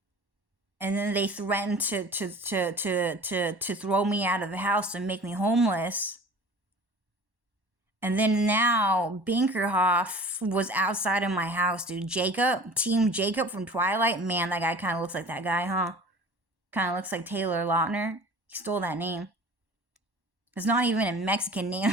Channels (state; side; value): late; left; 1.1 ms